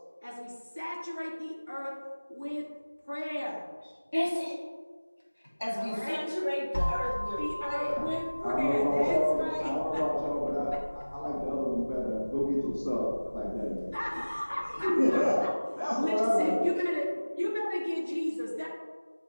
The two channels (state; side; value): inverted; both; correlation -1.00